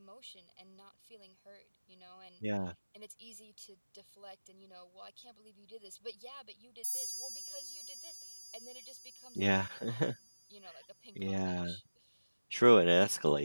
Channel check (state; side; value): inverted; both; correlation -1.00